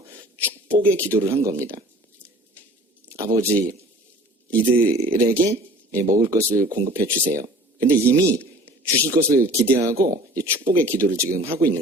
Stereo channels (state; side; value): normal; both; correlation 0.47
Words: 축복의 기도를 한 겁니다. 아버지, 이들에게 먹을 것을 공급해 주세요. 근데 이미 주실 것을 기대하고 축복의 기도를 지금 하고